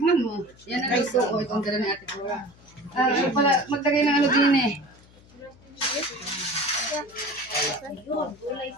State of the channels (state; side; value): noise; left; hum, 26 dB below the sound